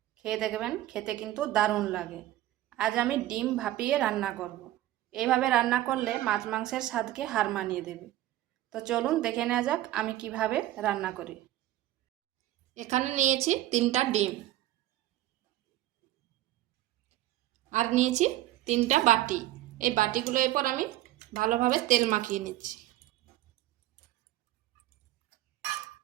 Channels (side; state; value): left; quieter; 14.9 dB